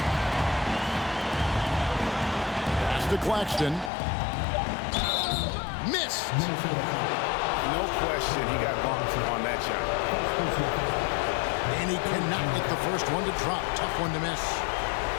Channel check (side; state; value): right; drops out; at 3.9 s